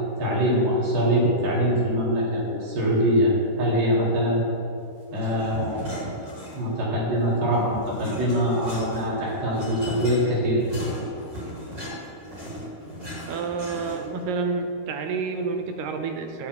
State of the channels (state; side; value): late; left; 13 ms